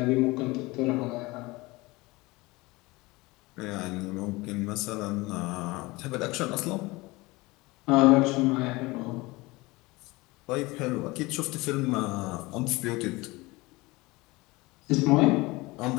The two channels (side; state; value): right; quieter; 22.4 dB